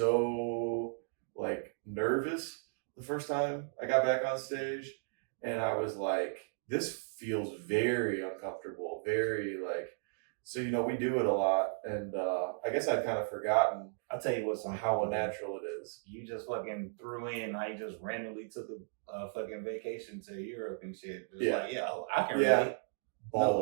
nervous the first time I got back on stage, and I was like, this feels very uncomfortable, very so, we do it a lot, and I guess I've kind of forgotten. I'll tell you what's how unnatural it is. You just fucking threw in how you just randomly took a fucking vacation to Europe and shit. I can relate.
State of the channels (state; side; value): silent; left; digital silence